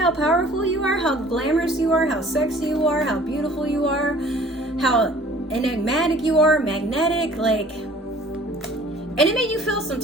powerful you are, how glamorous you are, how sexy you are, how beautiful you are, how enigmatic you are, magnetic, and it made you feel some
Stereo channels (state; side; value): normal; both; correlation 0.52